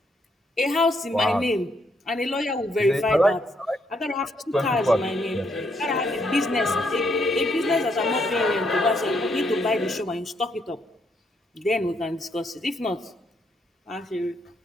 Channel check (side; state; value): both; normal; correlation 0.74